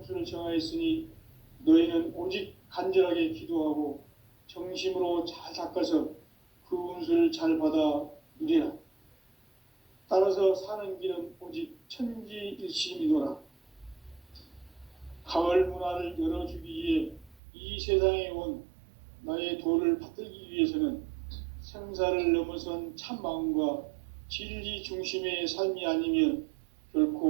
정하였으니 너희는 오직 간절하게 기도하고 정심으로 잘 닦아서 그 운수를 잘 받아 누리라. 따라서 사는 길은 오직 천지일심이노라. 가을 문화를 열어주기 위해 이 세상에 온 나의 도를 받들기 위해서는 생사를 넘어선 참 마음과 진리 중심의 삶이 아니면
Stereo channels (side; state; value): left; drops out; at 17.4 s